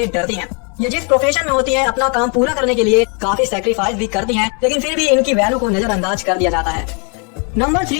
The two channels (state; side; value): quieter; right; 36.9 dB